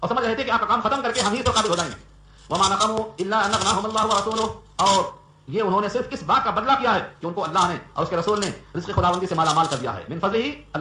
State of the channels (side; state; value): both; identical; correlation 1.00